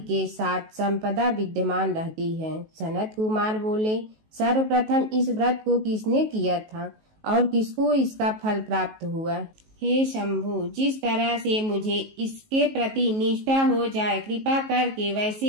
साथ संपदा विद्यमान रहती है। सनत कुमार बोले, सर्वप्रथम इस व्रत को किसने किया था और किसको इसका फल प्राप्त हुआ? हे शंभु, जिस तरह से मुझे इसके प्रति निष्ठा हो जाए, कृपा करके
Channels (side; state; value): left; late; 19 ms